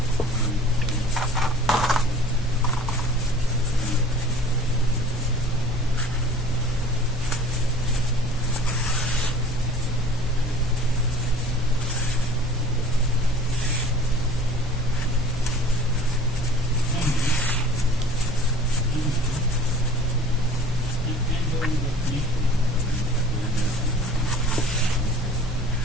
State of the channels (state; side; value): normal; both; correlation 0.48